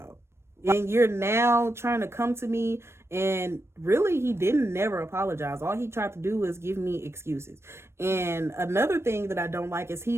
And you're now trying to come to me, and really he didn't never apologize. All he tried to do was give me excuses. And another thing that I don't like is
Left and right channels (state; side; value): late; left; 0.12 ms